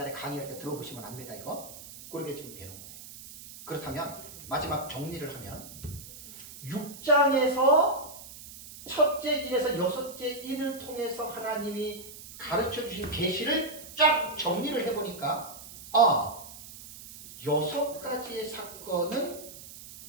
강의할 때 들어보시면 압니다. 이거 그렇게 지금 되는 거예요. 그렇다면 마지막 정리를 하면 6장에서 첫째 인에서 여섯째 인을 통해서 하나님이 가르쳐 주신 계시를 쫙 정리를 해보니까 6가지의 사건은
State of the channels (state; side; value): noise; right; hiss, 15 dB below the sound